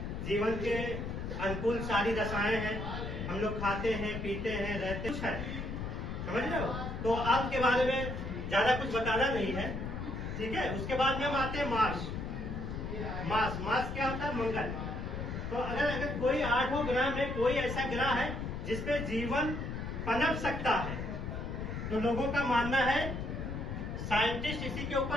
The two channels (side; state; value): left; noise; rumble, 5 dB below the sound